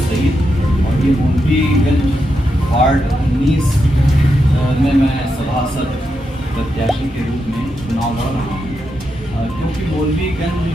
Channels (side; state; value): both; normal; correlation 0.85